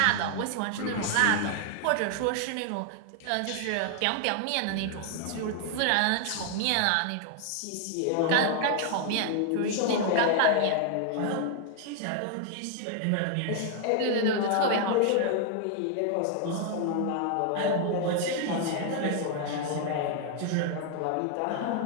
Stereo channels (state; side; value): different; both; correlation 0.00